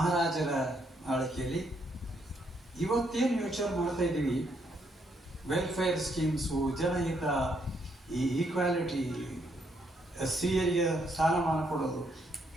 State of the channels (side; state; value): both; normal; correlation 0.74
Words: ಆಳ್ವಿಕೆಯಲ್ಲಿ ಇವತ್ತೇನು ಯೋಚನೆ ಮಾಡ್ತಾ ಇದ್ದೀವಿ, ವೆಲ್ಫೇರ್ ಸ್ಕೀಮ್ಸು, ಜನಹಿತ, ಈ ಈಕ್ವಾಲಿಟಿ, ಸ್ತ್ರೀಯರಿಗೆ ಸ್ಥಾನಮಾನ ಕೊಡೋದು,